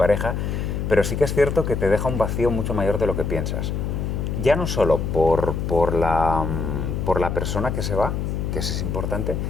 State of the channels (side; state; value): left; noise; hum, 2 dB below the sound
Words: pero sí que es cierto que te deja un vacío mucho mayor de lo que piensas. Ya no solo por la persona que se va, que eso es importante,